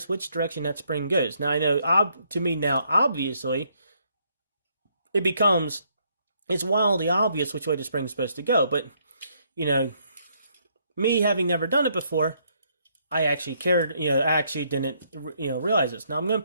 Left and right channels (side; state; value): both; inverted; correlation -0.71